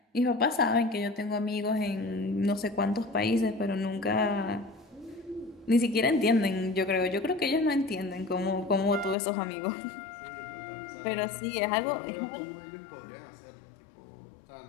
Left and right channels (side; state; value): right; drops out; at 9.2 s